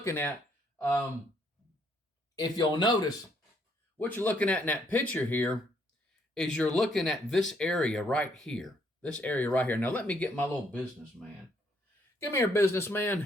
at, if you'll notice, what you're looking at in that picture here is you're looking at this area right here. This area right here. Now let me get my little businessman. Come here,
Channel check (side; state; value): both; normal; correlation 0.69